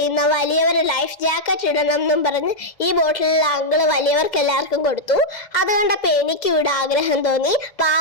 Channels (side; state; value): right; late; 2.0 ms